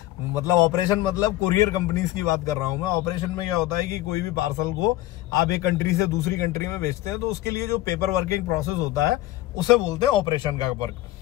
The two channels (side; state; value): right; quieter; 16.0 dB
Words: मतलब ऑपरेशन मतलब कुरियर कंपनीज की बात कर रहा हूं मैं। ऑपरेशन में क्या होता है कि कोई भी पार्सल को आप एक कंट्री से दूसरी कंट्री में भेजते हैं तो उसके लिए जो पेपर वर्किंग प्रोसेस होता है उसे बोलते हैं ऑपरेशन का वर्क।